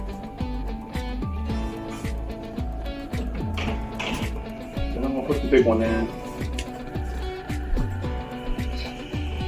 Put the big one in.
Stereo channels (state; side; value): identical; both; correlation 1.00